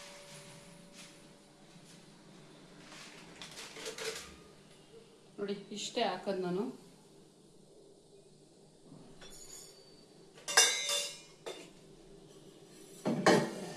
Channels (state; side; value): identical; both; correlation 1.00